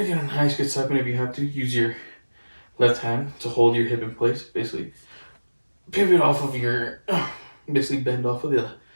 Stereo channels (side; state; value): both; inverted; correlation -1.00